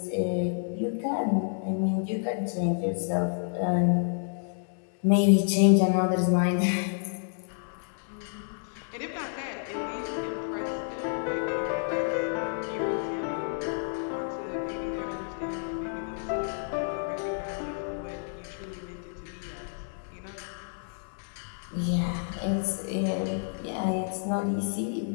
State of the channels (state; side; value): silent; right; digital silence